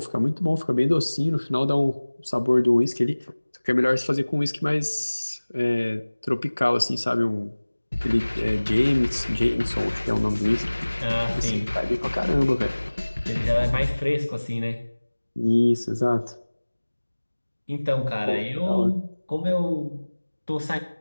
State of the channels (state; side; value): inverted; both; correlation -1.00